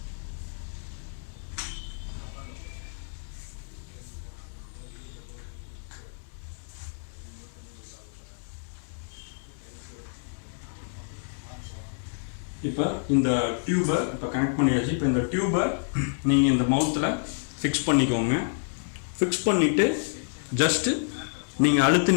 இப்போ இந்த டியூபை இப்போ கனெக்ட் பண்ணியாச்சு. இப்போ இந்த டியூபை நீங்கள் இந்த மவுத்தில் ஃபிக்ஸ் பண்ணிக்கோங்க. ஃபிக்ஸ் பண்ணிவிட்டு ஜஸ்ட்டு நீங்கள்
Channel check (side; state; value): right; silent; digital silence